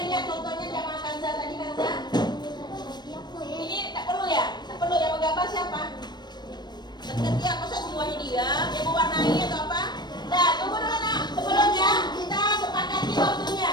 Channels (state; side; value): late; right; 0.21 ms